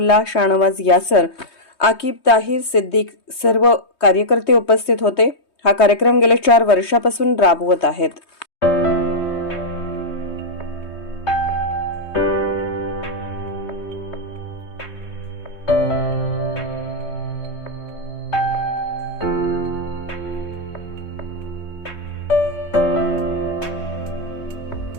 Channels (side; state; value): right; late; 3.2 ms